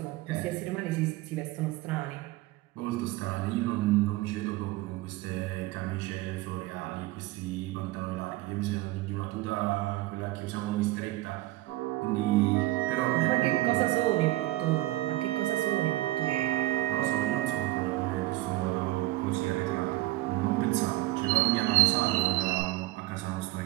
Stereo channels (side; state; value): left; quieter; 17.9 dB